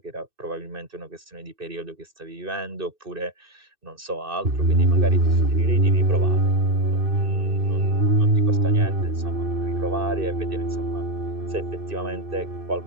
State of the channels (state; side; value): late; left; 2.6 ms